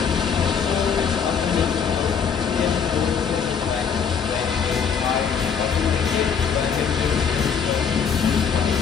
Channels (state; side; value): quieter; right; 6.8 dB